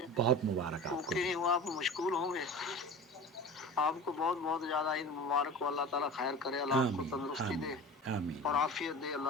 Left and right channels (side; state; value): both; normal; correlation 0.35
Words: बहुत मुबारक आपको ओके नहीं हुआ, आप मशगूल होंगे। आपको बहुत बहुत ज्यादा ईद मुबारक हो। अल्लाह ताला खैर करे, अल्लाह आपको आमीन तंदुरुस्ती दे आमीन आमीन। और आफियत दे